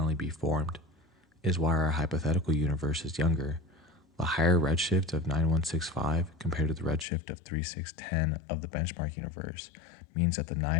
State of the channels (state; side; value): drops out; right; at 7.1 s